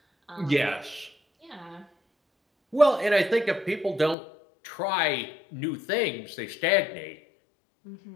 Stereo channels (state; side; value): drops out; right; at 4.2 s